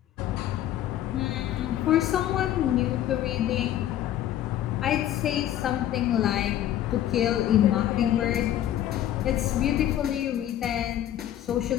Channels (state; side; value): quieter; right; 11.9 dB